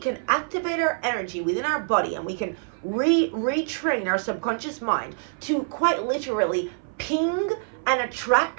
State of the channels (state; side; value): silent; left; 56 dB below the other